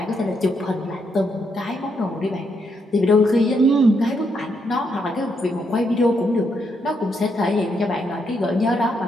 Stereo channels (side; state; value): both; normal; correlation 0.78